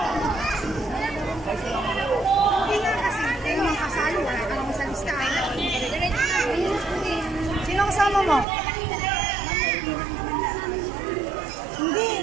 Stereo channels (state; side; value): drops out; left; at 8.5 s